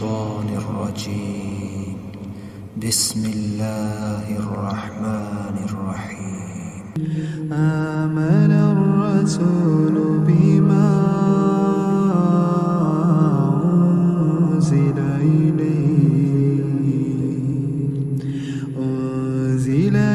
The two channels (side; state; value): both; identical; correlation 1.00